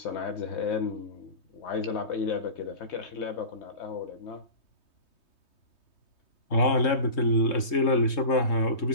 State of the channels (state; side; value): late; right; 3.7 ms